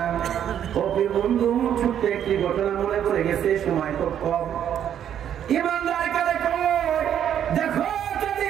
ও প্রিয় বন্ধু, ছোট্ট একটি ঘটনা মনে পড়ে গেছে, সময় খুব কম। ঈমানদার কারে কয় দেখো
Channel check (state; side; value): quieter; left; 9.7 dB